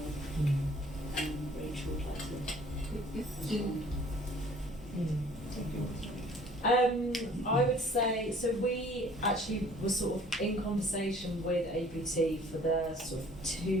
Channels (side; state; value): both; normal; correlation 0.54